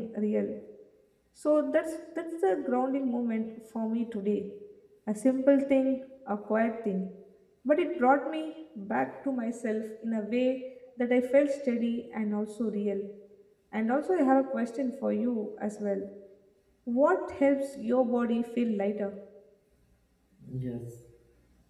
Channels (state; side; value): identical; both; correlation 1.00